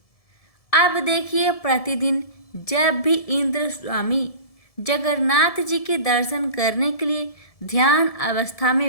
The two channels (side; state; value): right; late; 1.7 ms